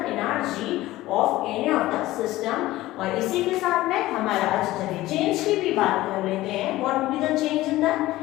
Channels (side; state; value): right; quieter; 16.9 dB